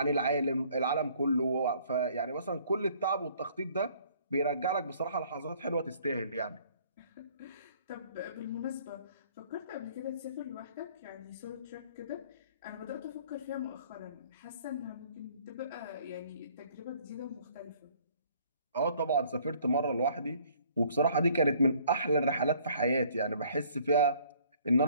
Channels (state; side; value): inverted; both; correlation -0.58